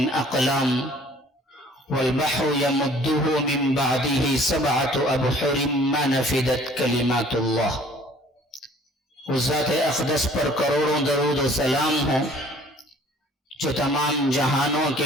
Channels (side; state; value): both; normal; correlation 0.54